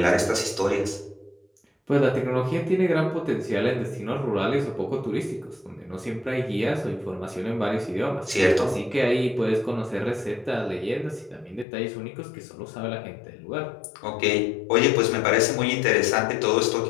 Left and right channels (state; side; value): drops out; right; at 11.7 s